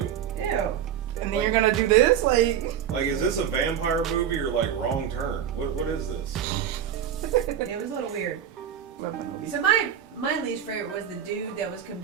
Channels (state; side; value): quieter; left; 9.3 dB